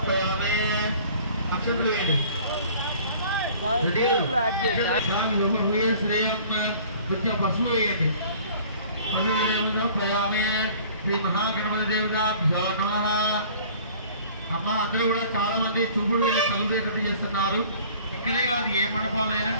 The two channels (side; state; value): both; inverted; correlation -0.50